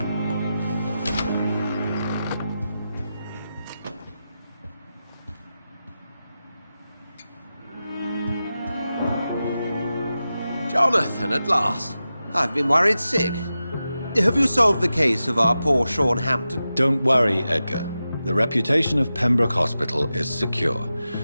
Jonathan, at last. I've been worried sick. Have you solved the case of our poor Sean Hampton? Don't worry, Edgar. The reputation of Pembroke Hospital is secure.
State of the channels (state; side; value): inverted; both; correlation -0.92